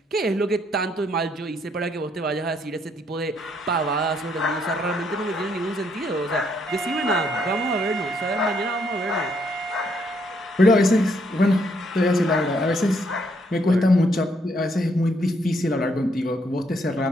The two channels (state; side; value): normal; both; correlation 0.72